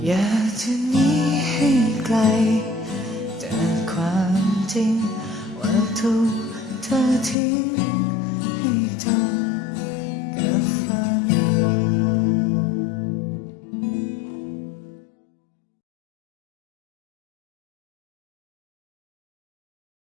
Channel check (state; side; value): drops out; right; at 7.4 s